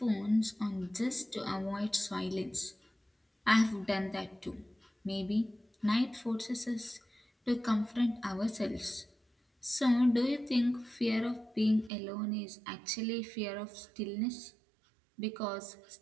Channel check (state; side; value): drops out; left; at 11.9 s